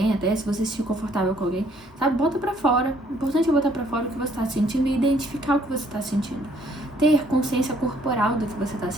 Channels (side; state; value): both; normal; correlation 0.64